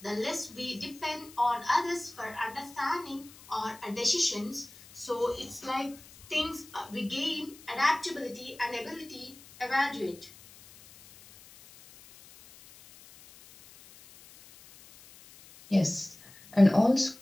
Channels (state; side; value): noise; left; hiss, 21 dB below the sound